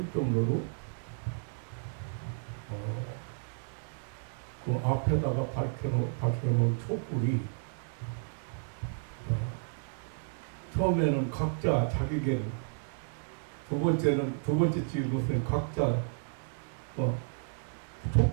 정도로 그 앞에다가 밝혀놓은 촛불이 처음에는 각자 자기계를, 두 번째 찍은 것은 각자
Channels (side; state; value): left; silent; digital silence